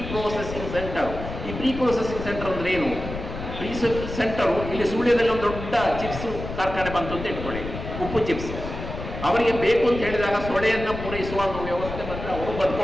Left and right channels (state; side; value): noise; left; rumble, 8 dB below the sound